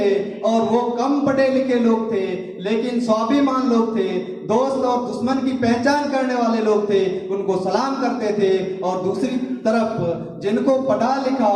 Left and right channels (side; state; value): both; identical; correlation 1.00